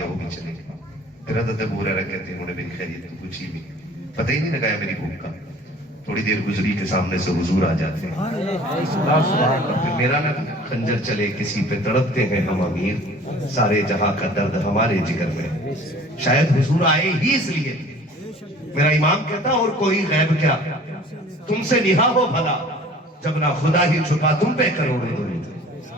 وہ بھی چلے گئے. پھر حضرت ابو ہریرہ کہتے ہیں انہوں نے میری خیریت تو پوچھی بھی, پتہ ہی نہیں لگایا میری بھوک کا. تھوڑی دیر گزری کے سامنے سے حضور آ جاتے ہیں. پھر میرا نہ خنجر چلے کسی پہ تڑپتے ہیں ہم امیر, سارے جہاں کا درد ہمارے جگر میں. شاید حضور آئے ہی اس لیے. میرا امام کہتا اور کوئی غیب کیا, تم سے نہا ہو بھلا, جب نہ خدا ہی چھپا تم پہ کروڑے درود.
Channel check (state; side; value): normal; both; correlation 0.48